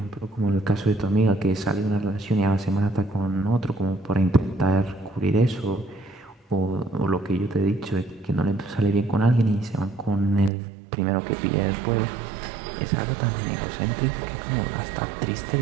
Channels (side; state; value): left; drops out; at 10.5 s